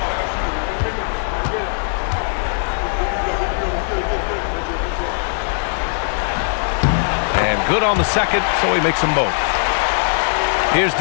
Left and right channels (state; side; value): silent; right; digital silence